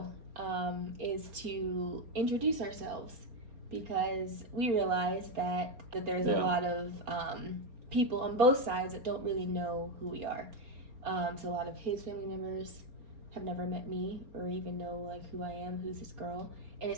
is to introduce ourselves because we realize that there's a lot of people on both sides that don't really know who we are. So a lot of his family members have never met me or even know like who I am, who's this girl, and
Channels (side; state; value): left; late; 4.3 ms